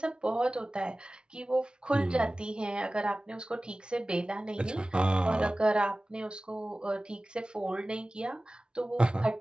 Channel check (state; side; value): late; left; 0.055 ms